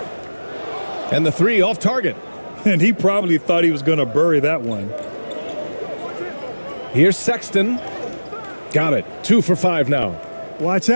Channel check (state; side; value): inverted; both; correlation -1.00